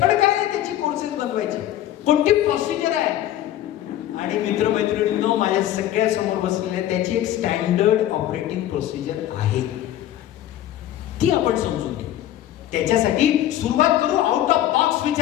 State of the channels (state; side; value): quieter; right; 12.6 dB